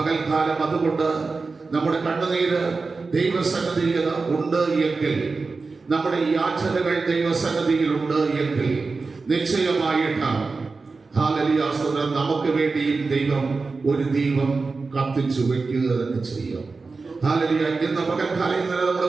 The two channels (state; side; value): quieter; left; 4.1 dB